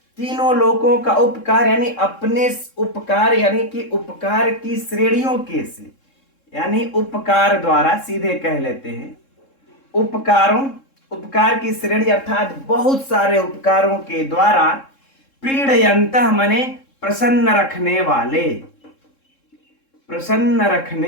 तीनों लोकों का उपकार यानी अपने उपकार यानी कि उपकार की श्रेणियों के से, यानी उपकार द्वारा सीधे कह लेते हैं, उपकारों, उपकार की श्रेणी अर्थात बहुत सारे उपकारों के द्वारा प्रीडयन्तः माने प्रसन्न रखने वाले, प्रसन्न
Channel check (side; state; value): right; late; 3.7 ms